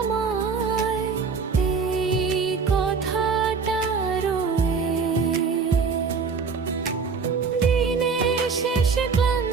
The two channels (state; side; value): quieter; left; 5.2 dB